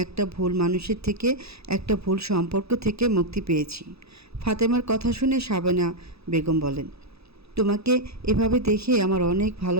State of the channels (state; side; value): late; left; 0.78 ms